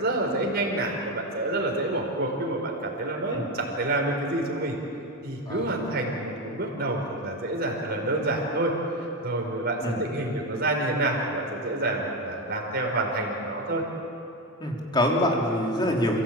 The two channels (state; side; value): normal; both; correlation 0.15